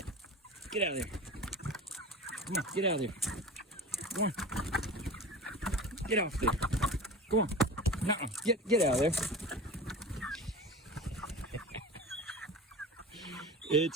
Get out of there. Come on. Get out of there. Come on. Get off there. Come on. Nuh-uh. Get out of there.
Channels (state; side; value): normal; both; correlation 0.34